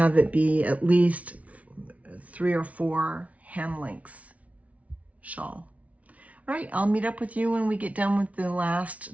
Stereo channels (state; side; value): late; left; 0.067 ms